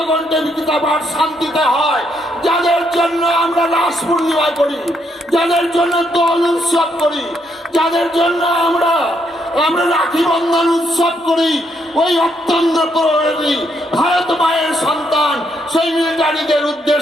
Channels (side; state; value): both; normal; correlation 0.75